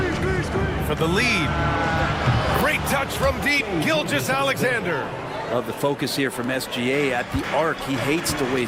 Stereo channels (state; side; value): identical; both; correlation 1.00